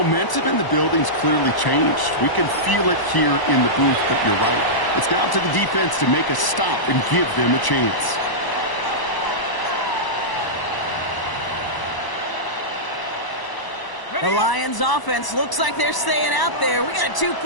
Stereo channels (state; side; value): late; right; 1.0 ms